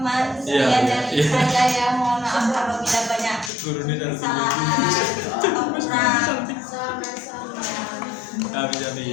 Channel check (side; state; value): right; drops out; at 3.5 s